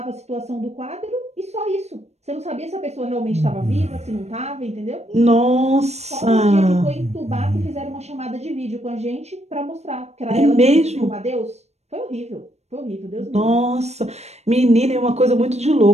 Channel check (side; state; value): left; late; 0.31 ms